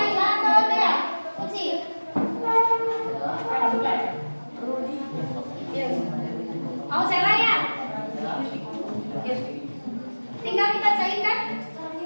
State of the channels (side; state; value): both; inverted; correlation -1.00